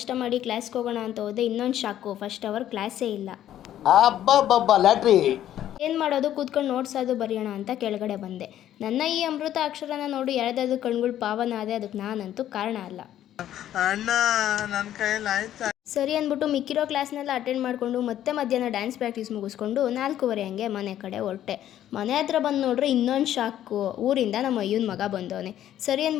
ಮಾಡಿ ಕ್ಲಾಸ್ಗೆ ಹೋಗೋಣ ಅಂತ ಹೋದೆ. ಇನ್ನೊಂದು ಶಾಕು, ಫಸ್ಟ್ ಅವರ್ ಕ್ಲಾಸೇ ಇಲ್ಲ. ಏನು ಮಾಡೋದು, ಕೂತ್ಕೊಂಡು ನೋಟ್ಸ್ ಅದು ಬರೆಯೋಣ ಅಂತ ಕೆಳಗಡೆ ಬಂದೆ. ನನ್ನ ಈ ಅಮೃತ ಅಕ್ಷರನ ನೋಡಿ ಯಾರ್ದಾದ್ರು ಕಣ್ಗಳು ಪಾವನ ಆದೆ, ಅದಕ್ಕೆ ನಾನಂತೂ ಕಾರಣ ಅಲ್ಲ. ಸರಿ ಅಂದ್ಬಿಟ್ಟು ಮಿಕ್ಕಿರೋ ಕ್ಲಾಸ್ನೆಲ್ಲ ಅಟೆಂಡ್ ಮಾಡಿಕೊಂಡು ಮತ್ತೆ ಮಧ್ಯಾಹ್ನ ಡ್ಯಾನ್ಸ್ ಪ್ರಾಕ್ಟೀಸ್ ಮುಗಿಸ್ಕೊಂಡು 4:15 ಹಂಗೆ ಮನೆ ಕಡೆ ಹೊರಟೆ. ಮನೆ ಹತ್ರ ಬಂದು ನೋಡ್ರೆ ಇನ್ನೊಂದು ಶಾಕು, ಊರಿಂದ ನಮ್ಮ ಅಯ್ಯನ ಮಗ ಬಂದವನೆ. ಸರಿ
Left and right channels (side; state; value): right; quieter; 11.7 dB